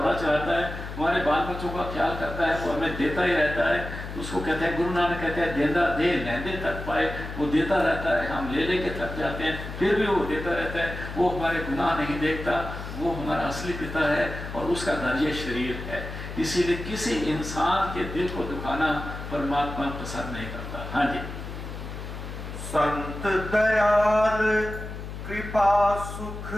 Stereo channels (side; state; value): left; noise; hum, 9 dB below the sound